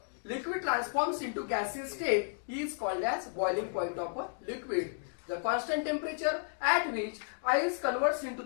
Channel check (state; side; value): silent; right; digital silence